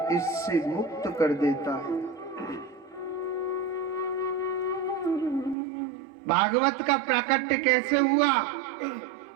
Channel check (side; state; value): left; drops out; at 5.6 s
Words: इससे मुक्त कर देता है। भागवत का प्राकट्य कैसे हुआ?